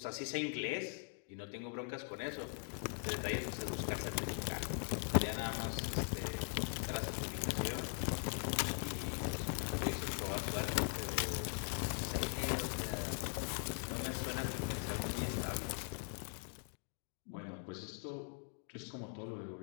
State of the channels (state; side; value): silent; right; 50 dB below the other